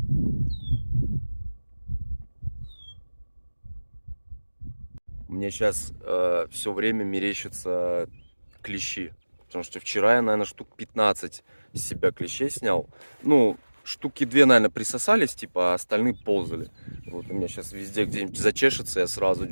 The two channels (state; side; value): inverted; both; correlation -1.00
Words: Мне сейчас все время мерещатся клещи. Потому что вчера я, наверное, штук 15 из себя клещей снял. Ну, штуки 2, наверное, присосались, типа, а остальные ползали. Вот у меня сейчас везде где-нибудь зачешется, я сразу